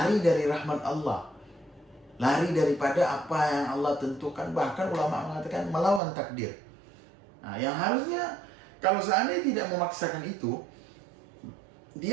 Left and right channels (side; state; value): left; drops out; at 6.0 s